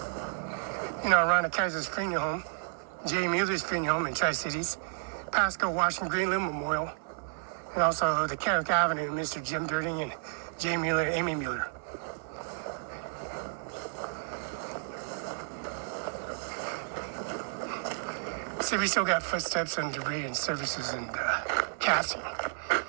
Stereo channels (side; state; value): left; silent; 57 dB below the other